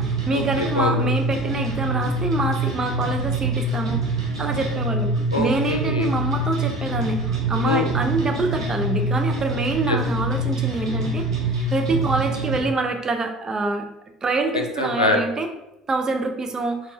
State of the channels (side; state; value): both; normal; correlation 0.38